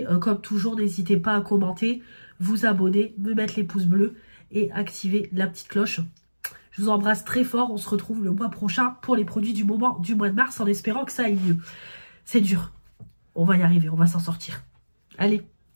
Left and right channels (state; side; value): inverted; both; correlation -1.00